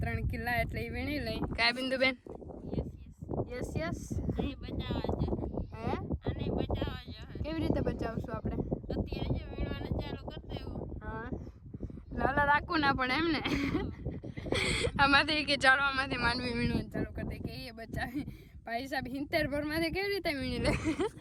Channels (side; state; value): both; identical; correlation 1.00